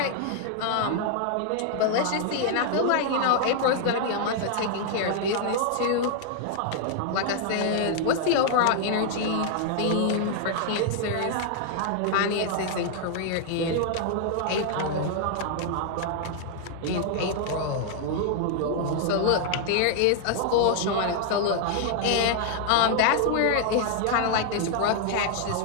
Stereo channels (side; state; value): both; different; correlation 0.00